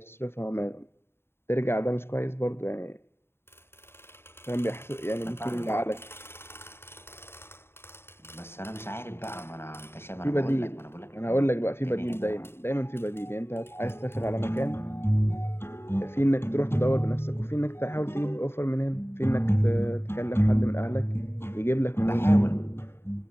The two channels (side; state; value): right; late; 0.11 ms